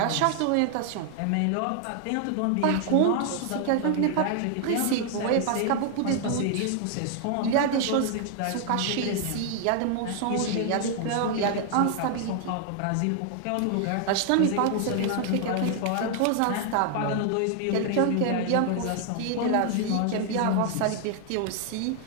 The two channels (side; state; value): both; different; correlation 0.00